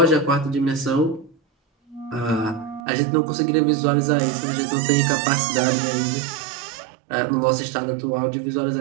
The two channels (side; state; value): left; drops out; at 2.8 s